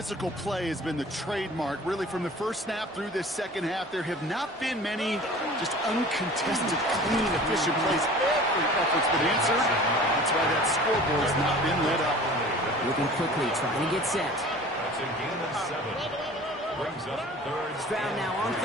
play has been the trademark, really, from the first snap through this second half. There have not been many just uncontested, clean, efficient plays. Every effort's been answered. That's why that scoreboard has not been lit up. Moving quickly, trying to get set. That's a gain of 7. Brings up third. Stroud now on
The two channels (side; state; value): both; normal; correlation 0.43